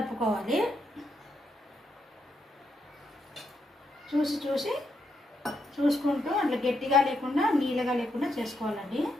చూసుకుంటూ అట్లా గట్టిగా లేకుండా నీళ్ళగా లేకుండా చేసుకోవాలండి,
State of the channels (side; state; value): both; normal; correlation 0.80